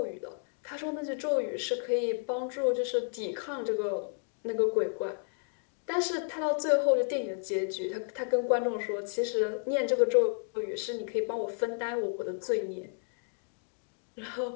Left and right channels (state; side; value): silent; right; digital silence